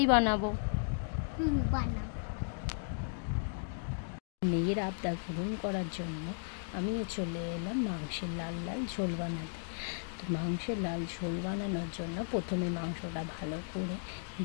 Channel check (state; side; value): silent; right; digital silence